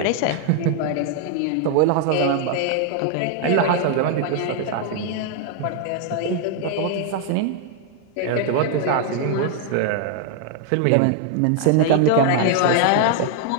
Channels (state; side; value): different; both; correlation 0.00